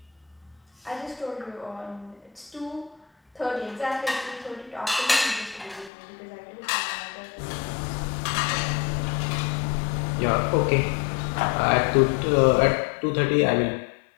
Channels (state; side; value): drops out; right; at 5.9 s